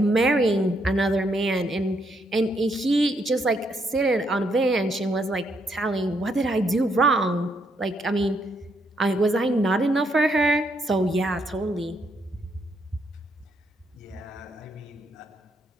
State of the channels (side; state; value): both; normal; correlation 0.75